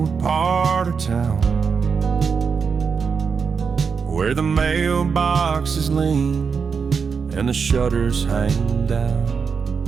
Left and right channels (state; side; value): quieter; left; 5.8 dB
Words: part of town, where the mailboxes lean and the shutters hang down.